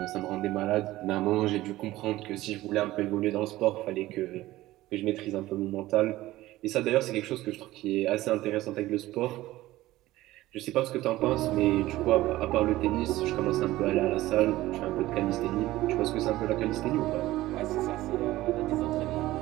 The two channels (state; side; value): quieter; left; 16.7 dB